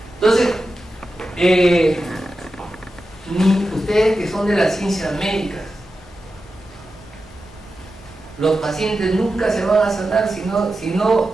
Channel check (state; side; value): normal; both; correlation 0.91